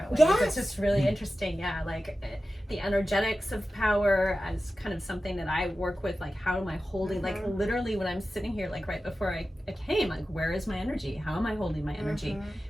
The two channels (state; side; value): normal; both; correlation 0.94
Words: ways. Yes. It's just really interesting. Yeah, like the energetics of power as kind of something that I work with. Like, how am I holding, like literally when I'm sitting here, like right before I came, like, where is my energy? How am I holding my energy?